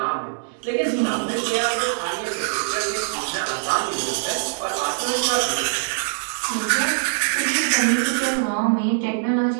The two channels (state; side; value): silent; left; digital silence